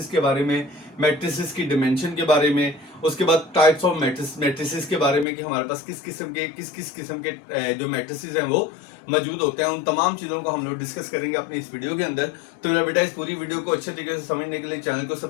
के बारे में, मैट्रिसेस की डिमेंशन के बारे में, उसके बाद टाइप्स ऑफ मैट्रिसेस के बारे में कि हमारे पास किस किस्म के जो मैट्रिसेस हैं वो मौजूद होते हैं। उन तमाम चीज़ों को हम लोग डिस्कस करेंगे अपनी इस वीडियो के अंदर। तो मेरा बेटा, इस पूरी वीडियो को अच्छे तरीके से समझने के लिए चैनल को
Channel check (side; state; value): right; drops out; at 5.2 s